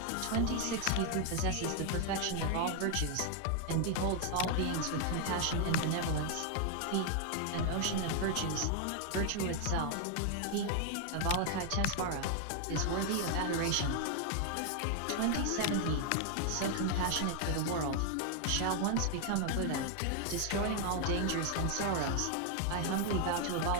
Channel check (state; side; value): different; both; correlation 0.00